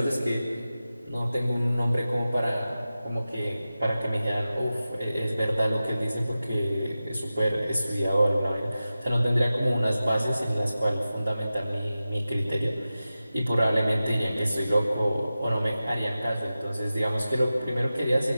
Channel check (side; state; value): both; inverted; correlation -0.94